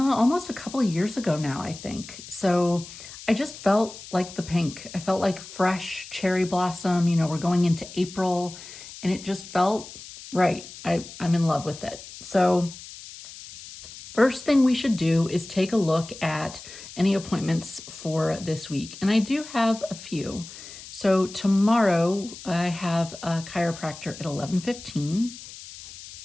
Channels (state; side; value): noise; left; hiss, 15 dB below the sound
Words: a couple of years ago now, I think. So I just felt like the pink. I felt like fresh cherry blossom. You know, we're going into April, and it just felt right. I'm in love with it. So first thing we should do is take a look at any appointments for this week. And I do have a few. So tomorrow I have a chiropractor at 11:15.